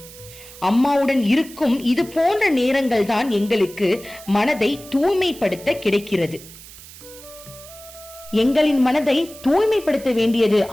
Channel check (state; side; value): noise; right; hiss, 18 dB below the sound